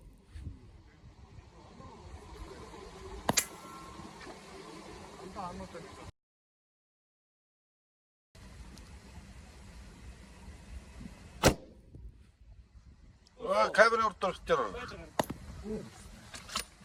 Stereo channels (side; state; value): both; identical; correlation 1.00